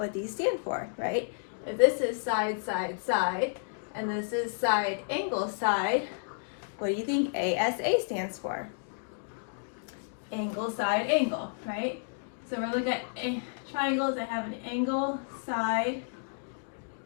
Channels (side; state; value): right; silent; digital silence